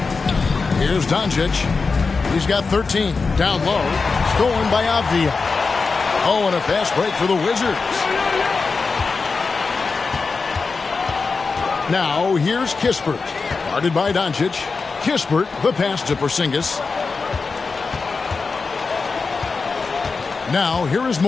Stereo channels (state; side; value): quieter; right; 4.5 dB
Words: Here's Doncic. He's got 13. Down low. Stolen by Avdia. Oh, and a fast break for the Wizards. Now, here's Kispert. Guarded by Doncic. Kispert, the pass to Porzingis. Now, here is